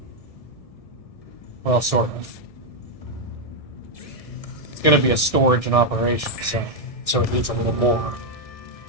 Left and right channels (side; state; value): right; late; 1.6 ms